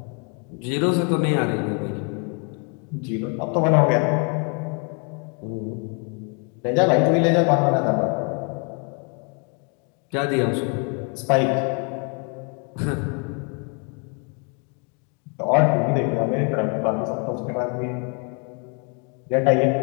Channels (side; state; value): right; quieter; 37.0 dB